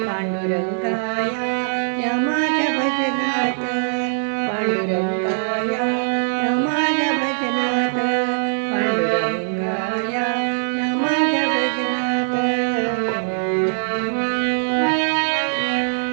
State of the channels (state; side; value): silent; left; 57 dB below the other